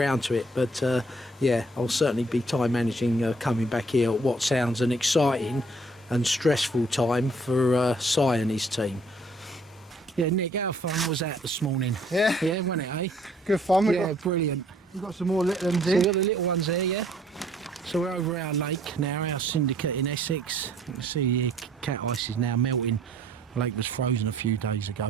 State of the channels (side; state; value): both; normal; correlation 0.61